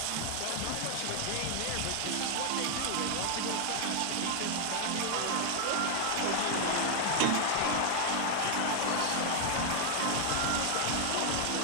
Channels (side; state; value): both; different; correlation 0.00